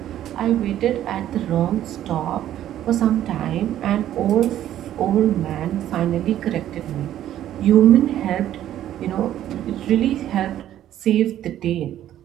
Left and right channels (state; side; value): quieter; left; 12.0 dB